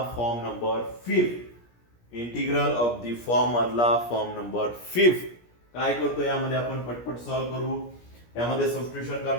form number 5. Integral of the form मधला फॉर्म नंबर 5. काय करतो यामध्ये आपण पटपट सॉल्व्ह करू. यामध्ये सबस्टिट्यूशन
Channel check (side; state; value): right; late; 17 ms